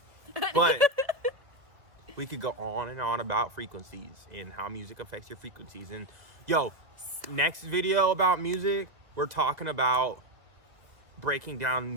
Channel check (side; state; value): left; late; 2.0 ms